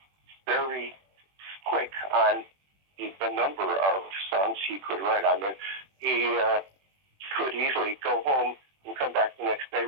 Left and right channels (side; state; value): left; late; 21 ms